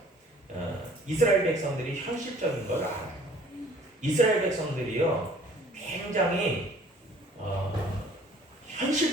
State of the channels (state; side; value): normal; both; correlation 0.53